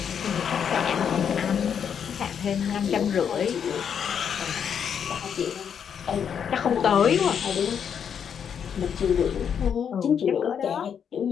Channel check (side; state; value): right; quieter; 7.8 dB